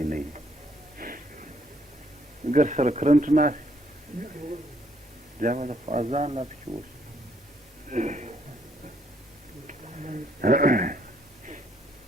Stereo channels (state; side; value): normal; both; correlation 0.69